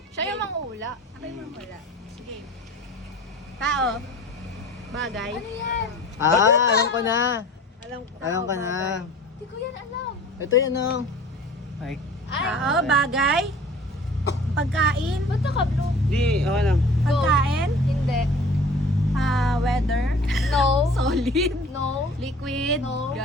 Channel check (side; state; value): both; normal; correlation 0.45